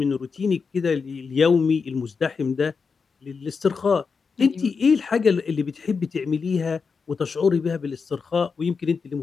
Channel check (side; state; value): right; quieter; 5.2 dB